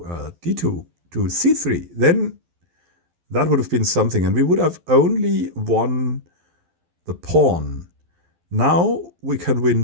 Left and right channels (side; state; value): left; late; 12 ms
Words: d2 to c3. Then that would have been something. And we would have only won the pawn. Now we can win